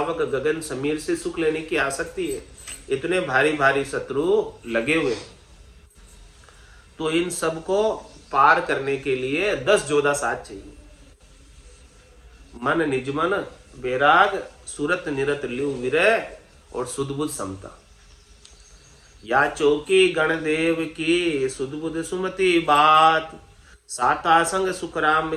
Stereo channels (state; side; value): identical; both; correlation 1.00